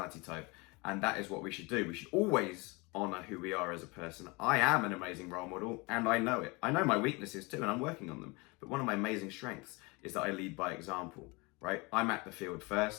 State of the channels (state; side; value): quieter; right; 26.5 dB